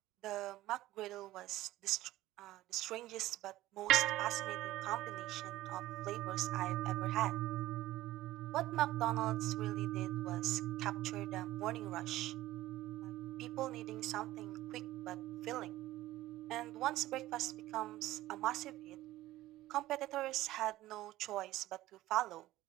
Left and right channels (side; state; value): left; quieter; 16.0 dB